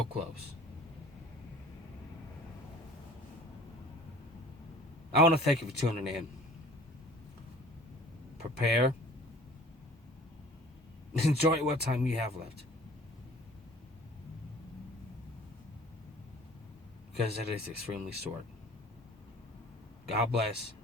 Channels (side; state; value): both; normal; correlation 0.48